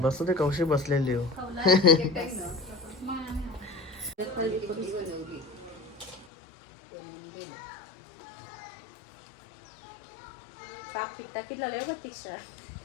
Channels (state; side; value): drops out; right; at 6.2 s